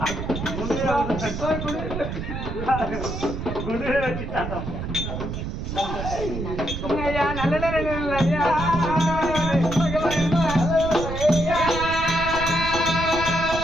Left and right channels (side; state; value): right; noise; rumble, 5 dB below the sound